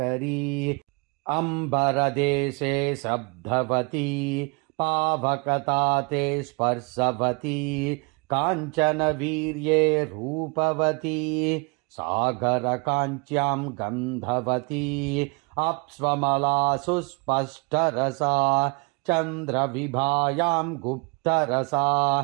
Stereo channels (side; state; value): left; quieter; 31.5 dB